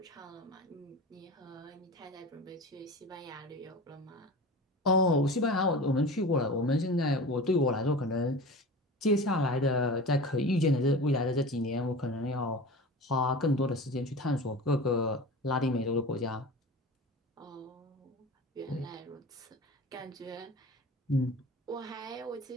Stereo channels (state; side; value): normal; both; correlation 0.34